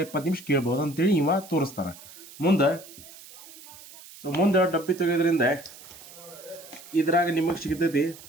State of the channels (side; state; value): right; noise; hiss, 18 dB below the sound